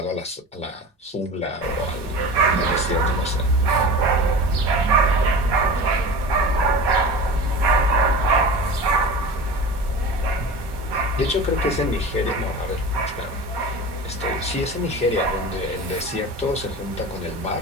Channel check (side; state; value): both; normal; correlation 0.33